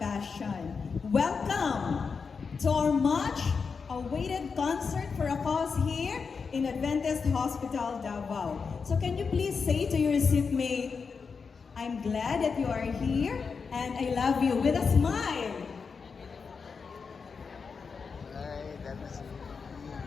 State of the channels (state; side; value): quieter; right; 5.3 dB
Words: Welcome to our much awaited concert for a cause here in Adventist Hospital, Davao. So can you please say to your seatmate, I'm glad that you are here and I love you with a smile.